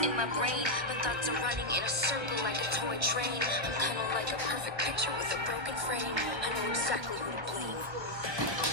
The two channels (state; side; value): late; left; 1.1 ms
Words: in my brain. My thoughts are running in a circle like a toy train. I'm kind of like a perfect picture with a broken frame. I know exactly who to blame.